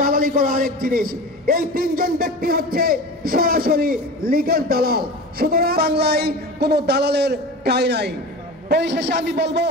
করা আরেক জিনিস। এই তিনজন ব্যক্তি হচ্ছে সরাসরি লীগের দালাল। সুতরাং বাংলায় কোনো দালালের ঠাঁই নাই। পরিশেষে আমি বলবো,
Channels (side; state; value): both; normal; correlation 0.32